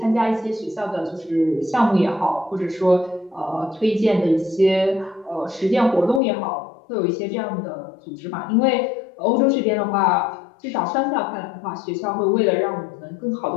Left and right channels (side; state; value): right; drops out; at 6.2 s